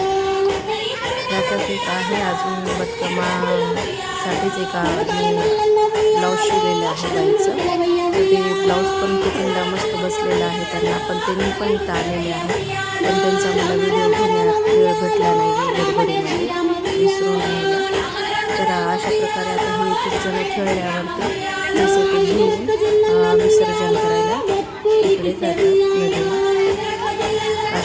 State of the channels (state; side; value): identical; both; correlation 1.00